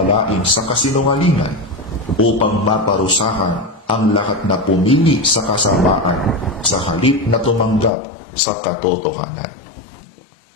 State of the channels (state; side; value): drops out; right; at 7.9 s